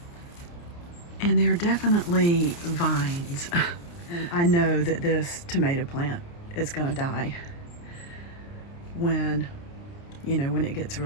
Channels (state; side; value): late; right; 29 ms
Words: and they're definitely vines. And I know that this tomato plant is gonna die when it gets